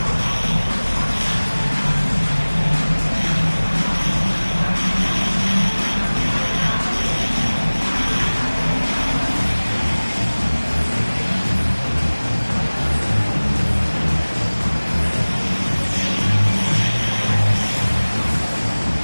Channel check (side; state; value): both; inverted; correlation -1.00